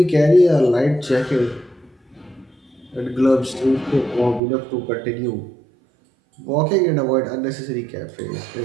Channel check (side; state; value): left; drops out; at 4.4 s